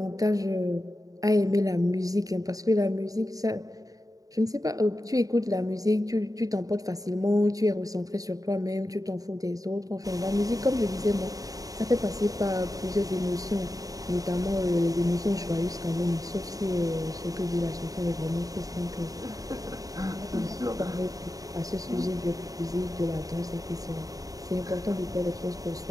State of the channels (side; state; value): left; late; 0.17 ms